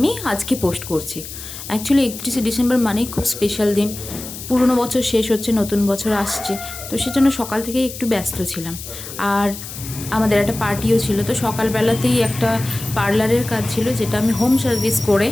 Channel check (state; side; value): noise; left; hiss, 11 dB below the sound